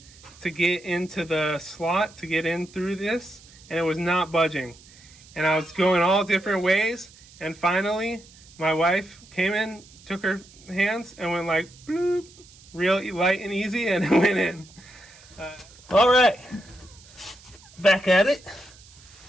to get into the slot, to get in through this, and it was not budging. And I was going all different ways, and finally my wife came in, took her hands and went like bloop, real light and easy, and it went in. All right, back at it.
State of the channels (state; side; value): noise; right; hiss, 23 dB below the sound